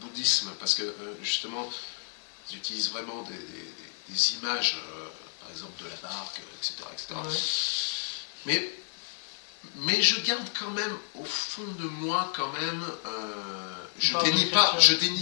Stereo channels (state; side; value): silent; right; 57 dB below the other